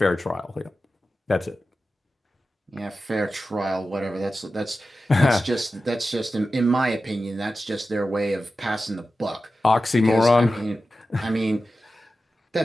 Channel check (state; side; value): normal; both; correlation 0.93